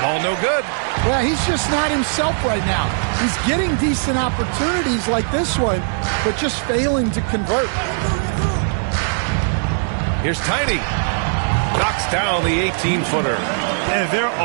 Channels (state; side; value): silent; left; 60 dB below the other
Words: Ball no good. Yeah, he's just not himself right now. He's getting decent opportunities like this one, but just failing to convert. Here's Tiny. Knocks down the 18-footer. And their